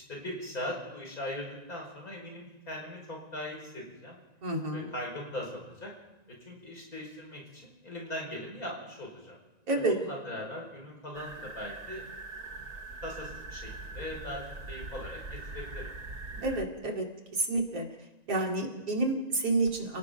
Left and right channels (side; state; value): left; late; 1.9 ms